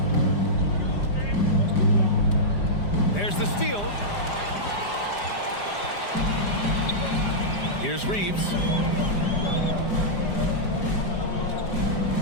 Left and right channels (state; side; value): late; right; 5.0 ms